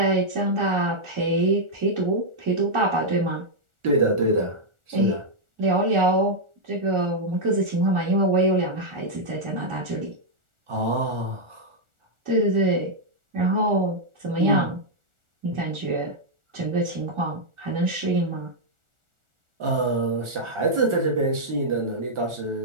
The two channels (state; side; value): late; left; 1.4 ms